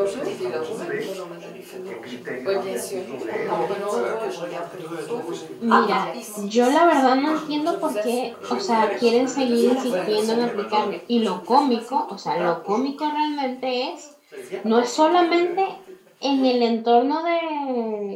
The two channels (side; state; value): both; identical; correlation 1.00